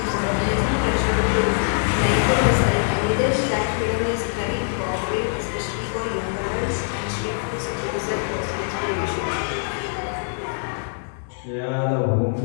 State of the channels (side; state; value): right; silent; digital silence